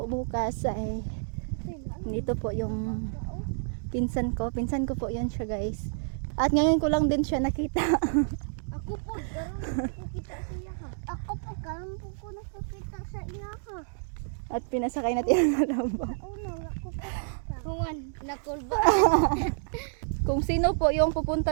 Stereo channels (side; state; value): left; silent; digital silence